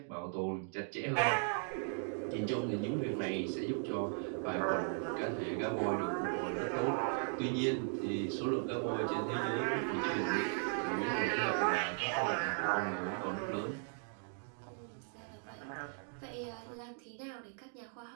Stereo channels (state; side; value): silent; left; 53 dB below the other